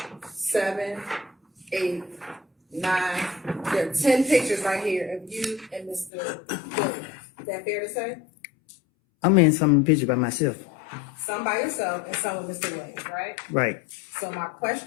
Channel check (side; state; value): right; drops out; at 6.1 s